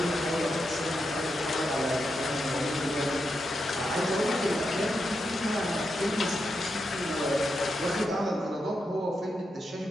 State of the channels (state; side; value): normal; both; correlation 0.85